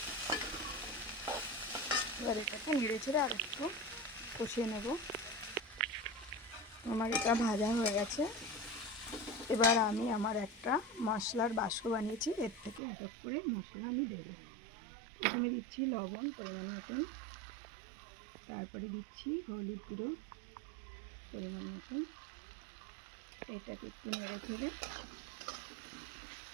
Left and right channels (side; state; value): left; drops out; at 12.8 s